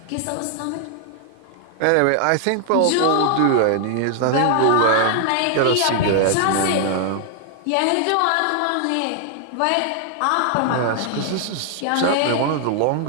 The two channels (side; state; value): both; different; correlation 0.00